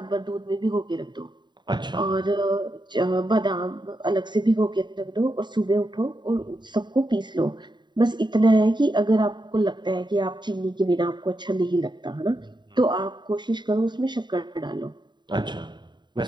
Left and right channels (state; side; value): late; left; 0.22 ms